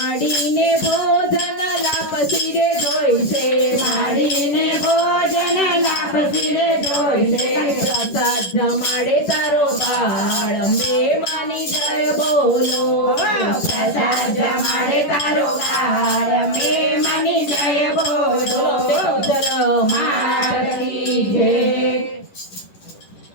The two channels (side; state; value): right; late; 10 ms